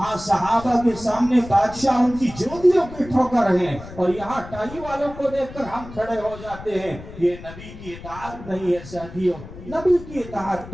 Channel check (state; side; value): noise; left; rumble, 15 dB below the sound